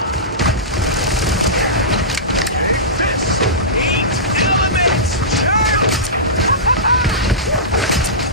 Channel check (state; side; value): normal; both; correlation -0.19